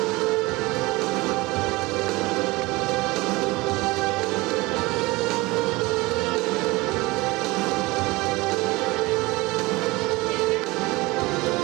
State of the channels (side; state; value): left; quieter; 22.1 dB